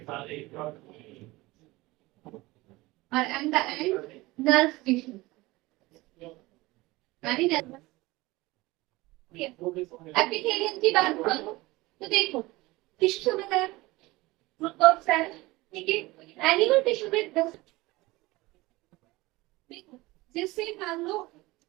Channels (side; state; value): left; quieter; 20.7 dB